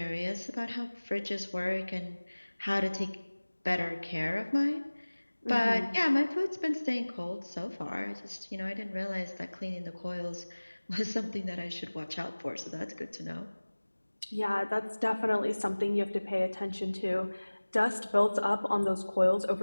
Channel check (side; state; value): both; inverted; correlation -1.00